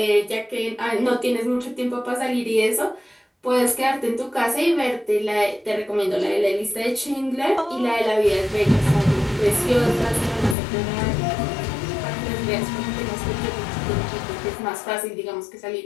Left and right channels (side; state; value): right; drops out; at 10.6 s